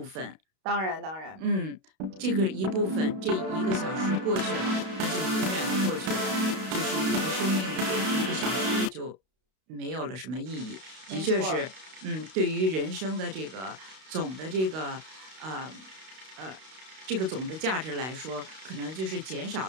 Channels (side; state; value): left; late; 32 ms